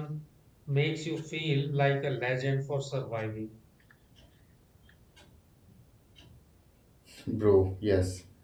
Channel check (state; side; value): identical; both; correlation 1.00